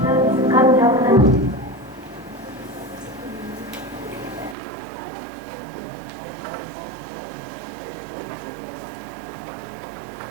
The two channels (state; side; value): drops out; left; at 4.5 s